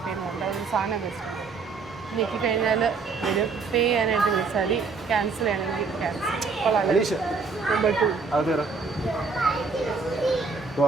പറഞ്ഞിട്ട് ഒരു സാധനം വെച്ചിട്ട് ഞെക്കി കഴിഞ്ഞാൽ വരും. പേ ചെയ്യാനായിട്ട് വിളിച്ചാൽ ക്യാൻസൽ ചെയ്യണമെങ്കിൽ ക്യാൻസൽ. നമ്പർ 2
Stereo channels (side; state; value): left; quieter; 4.7 dB